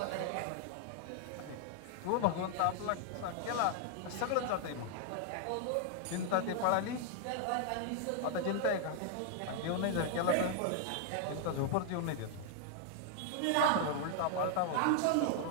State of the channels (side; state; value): both; different; correlation 0.00